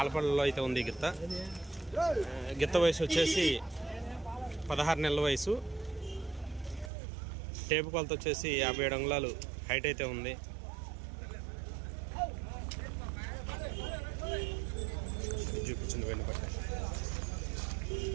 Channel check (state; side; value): drops out; left; at 6.9 s